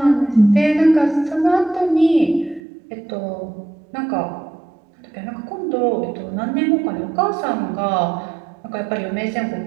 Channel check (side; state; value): left; drops out; at 2.6 s